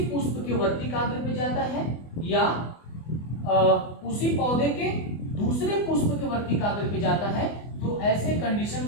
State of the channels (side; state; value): right; late; 24 ms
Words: पुष्प के वर्तिकाग्र पे जाता है या उसी पौधे के दूसरे पुष्प के वर्तिकाग्र पे जाता है, तो ऐसे कंडीशन